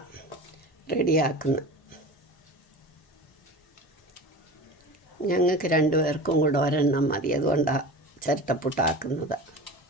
റെഡിയാക്കുന്നത്. ഞങ്ങൾക്ക് 2 പേർക്കും കൂടെ ഒരെണ്ണം മതി. അതുകൊണ്ടാണ് ചിരട്ടപ്പുട്ടാക്കുന്നത്.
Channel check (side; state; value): both; normal; correlation 0.34